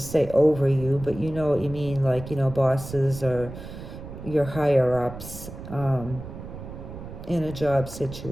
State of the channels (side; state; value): right; noise; rumble, 12 dB below the sound